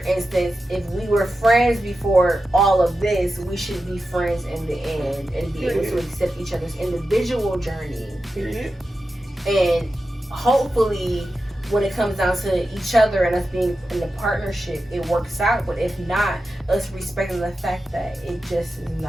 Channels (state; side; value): normal; both; correlation 0.91